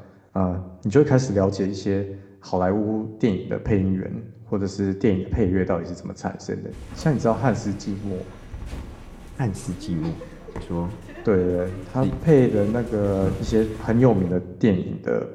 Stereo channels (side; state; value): both; identical; correlation 1.00